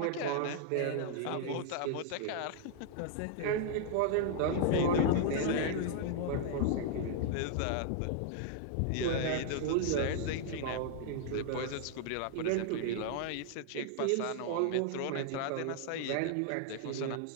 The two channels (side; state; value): both; different; correlation 0.00